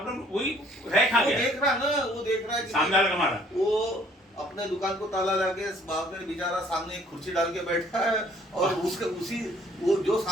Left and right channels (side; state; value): both; normal; correlation 0.59